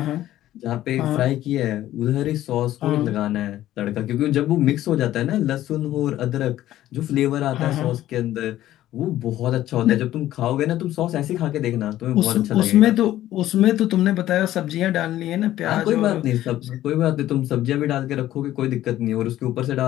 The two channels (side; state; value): right; quieter; 13.7 dB